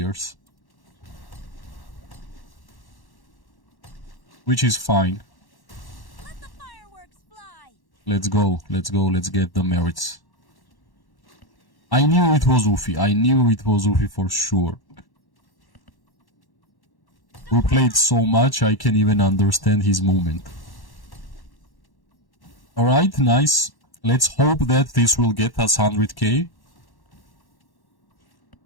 Which is fine. Let the fireworks fly. Let's go, let's get the merits. I knew it was Ufi for sure. We played so much, I can even understand his movement. Alright, nice. Let's hope that this will get us 100k.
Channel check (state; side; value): late; right; 1.1 ms